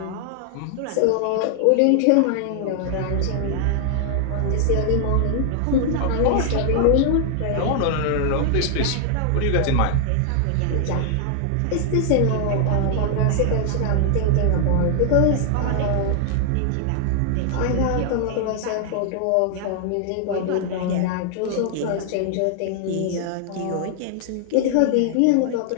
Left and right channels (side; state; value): both; different; correlation 0.00